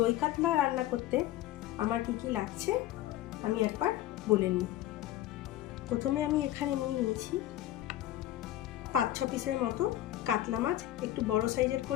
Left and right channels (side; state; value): right; quieter; 14.1 dB